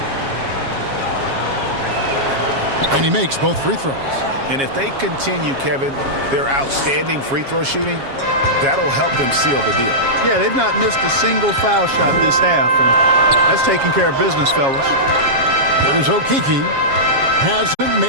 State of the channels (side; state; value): left; late; 7.3 ms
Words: And he makes both free throws. And if they continue, Kevin, their outstanding free throw shooting, that'll help them seal the deal. Yeah, they've not missed a single foul shot this half, and that's taking care of business, fellas. Here's Okeke. Hasn't